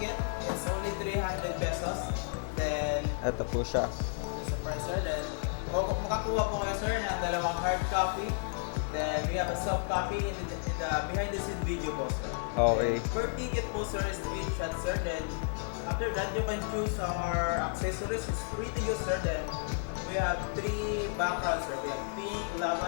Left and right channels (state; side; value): silent; right; 56 dB below the other